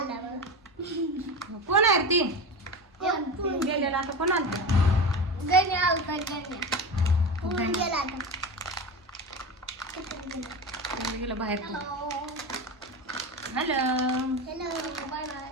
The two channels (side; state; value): both; normal; correlation 0.25